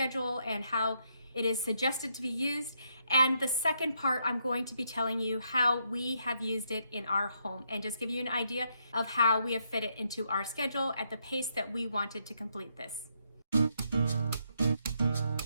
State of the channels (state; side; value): inverted; both; correlation -0.76